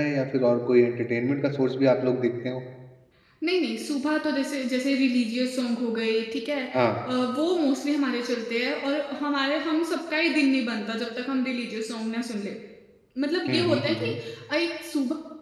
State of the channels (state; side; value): identical; both; correlation 1.00